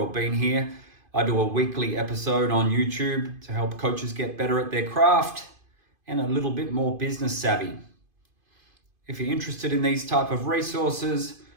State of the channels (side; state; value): left; late; 2.5 ms